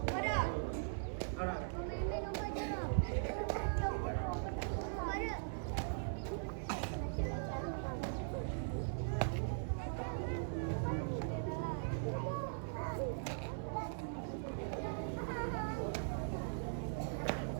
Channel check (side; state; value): left; silent; 51 dB below the other